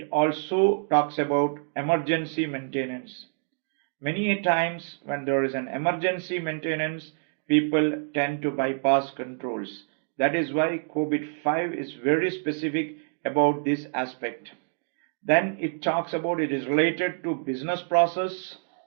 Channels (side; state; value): left; silent; digital silence